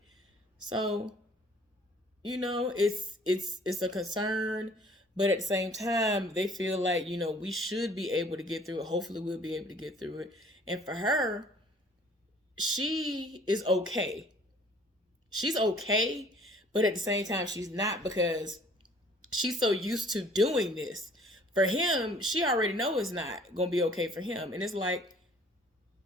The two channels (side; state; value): both; normal; correlation 0.54